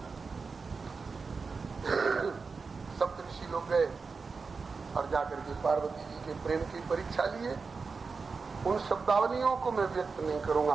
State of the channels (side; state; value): left; quieter; 4.7 dB